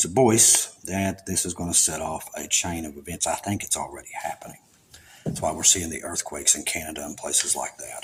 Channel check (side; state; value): both; identical; correlation 1.00